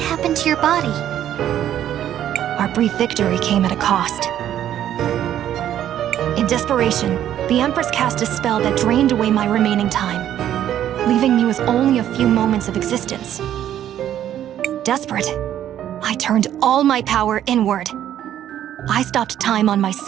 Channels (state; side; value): quieter; left; 11.1 dB